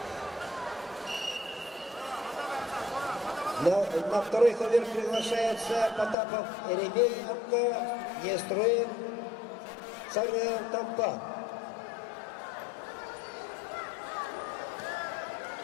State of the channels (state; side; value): drops out; right; at 6.2 s